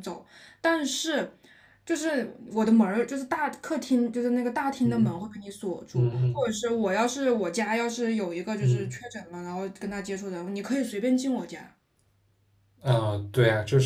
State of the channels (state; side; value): identical; both; correlation 1.00